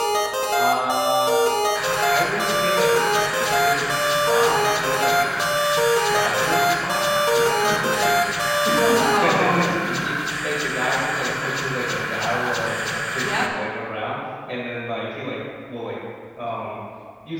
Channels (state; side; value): identical; both; correlation 1.00